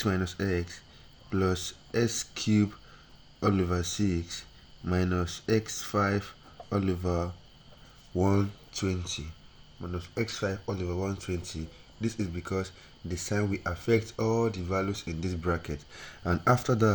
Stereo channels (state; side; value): identical; both; correlation 1.00